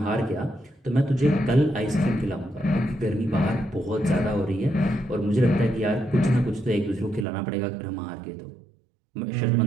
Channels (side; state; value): left; drops out; at 7.2 s